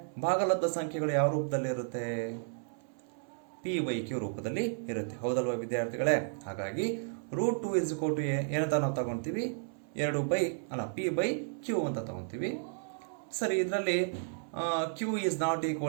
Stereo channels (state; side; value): silent; left; 56 dB below the other